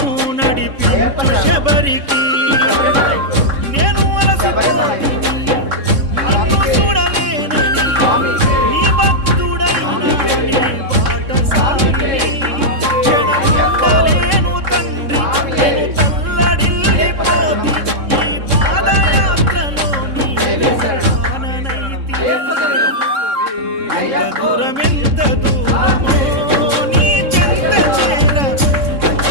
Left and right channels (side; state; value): left; late; 3.6 ms